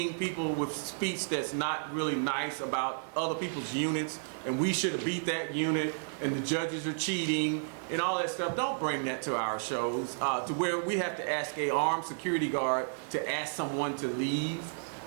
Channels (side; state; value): left; silent; digital silence